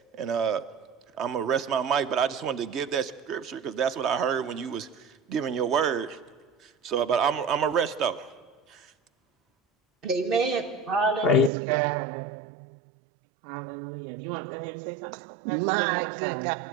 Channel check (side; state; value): left; drops out; at 11.5 s